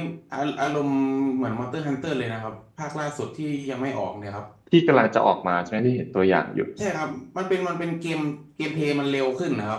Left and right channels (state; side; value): identical; both; correlation 1.00